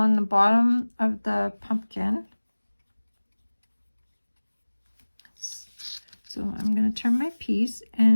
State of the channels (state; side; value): inverted; both; correlation -1.00